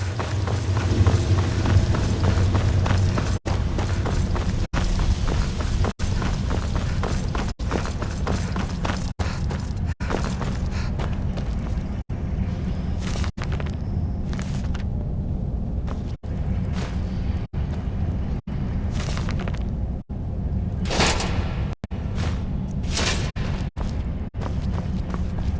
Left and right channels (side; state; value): both; identical; correlation 1.00